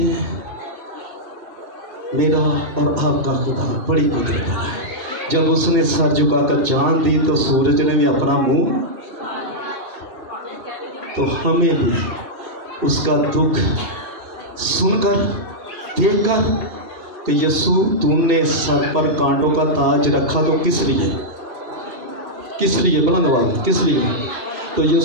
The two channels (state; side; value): late; left; 3.1 ms